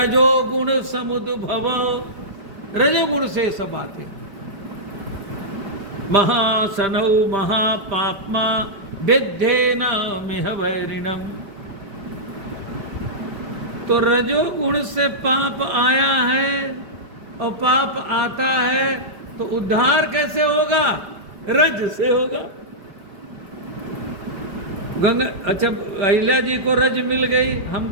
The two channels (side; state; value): left; late; 5.0 ms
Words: समुद्भव, रजोगुण से सब आते हैं। महासनौ महापाप्मा विद्धेन मिह वैरिणम। तो रजोगुण से पाप आया है, और पाप आता है तो उद्धार कैसे होगा? रज से होगा। गंगा, अच्छा अहिल्या जी को रज मिल गई,